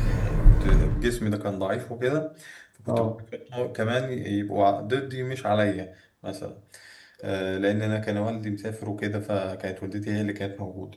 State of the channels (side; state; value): both; identical; correlation 1.00